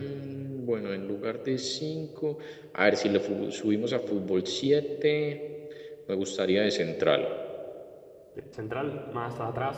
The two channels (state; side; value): identical; both; correlation 1.00